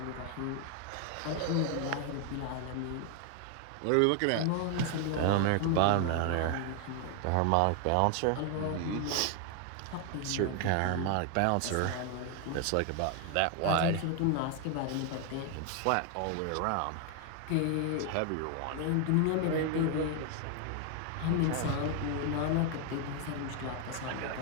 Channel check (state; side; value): different; both; correlation 0.00